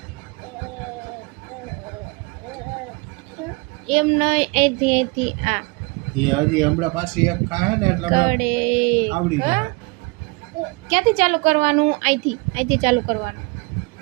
એમ નહીં અહીંથી આ એ હજી હમણાં પાછી એક ખાહે ને એટલે કડે આવડી જાય ક્યાંથી ચાલુ કરવાનું અહીંથી ચાલુ કરવાનું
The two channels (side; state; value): left; quieter; 27.4 dB